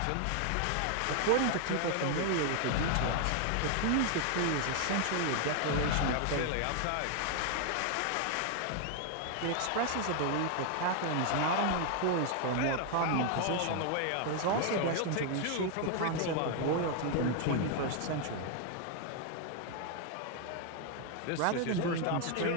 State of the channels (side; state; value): both; different; correlation 0.00